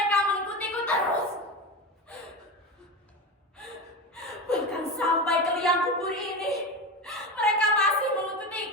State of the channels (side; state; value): both; normal; correlation 0.22